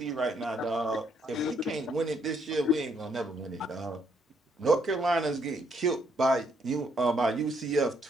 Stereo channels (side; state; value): both; normal; correlation 0.71